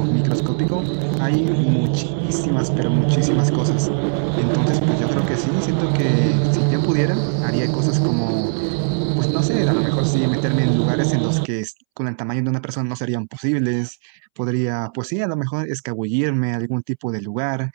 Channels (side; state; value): left; silent; 66 dB below the other